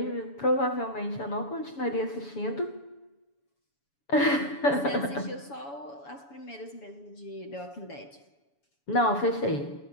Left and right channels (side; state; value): right; late; 7.1 ms